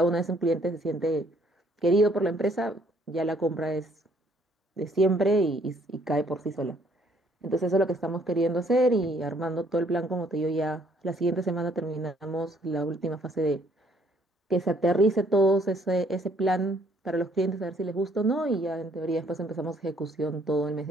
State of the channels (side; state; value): both; normal; correlation 0.64